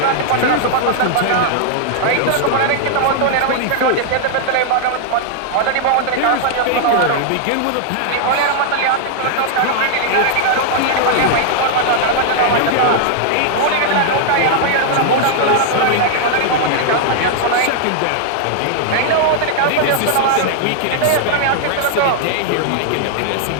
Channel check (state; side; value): different; both; correlation -0.01